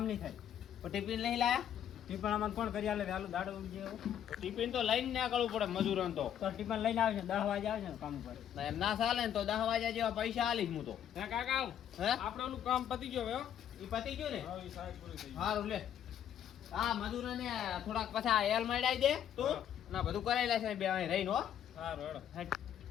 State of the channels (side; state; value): right; quieter; 9.9 dB